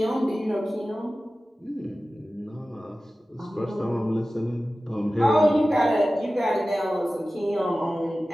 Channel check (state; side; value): normal; both; correlation 0.96